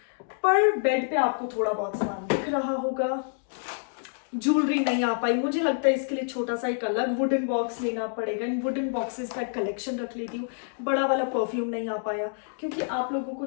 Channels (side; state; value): right; silent; digital silence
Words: पर बेड पे आपको थोड़ा बहुत सामान दिख रहा होगा। ज्वेलरी नहीं आ पाई, मुझे लगता है इसके लिए छोटा सा एक अलग वुडन बॉक्स लेना पड़ेगा, इन वुडन बॉक्सेस का कलेक्शन रख लेती हूँ। बड़ा वाला परफ्यूम नहीं आ पाया, क्योंकि आप लोगों को